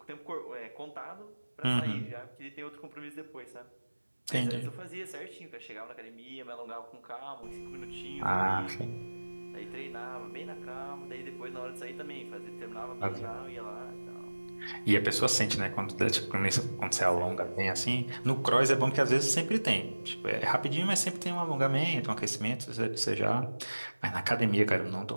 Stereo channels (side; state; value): both; inverted; correlation -1.00